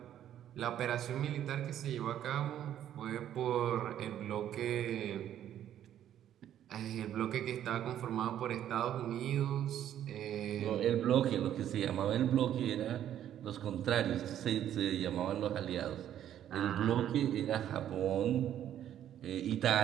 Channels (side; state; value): left; quieter; 10.9 dB